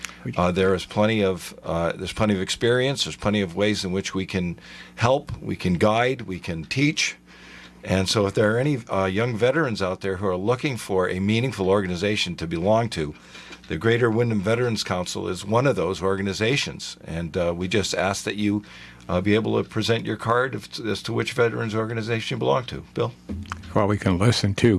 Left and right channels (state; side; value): identical; both; correlation 1.00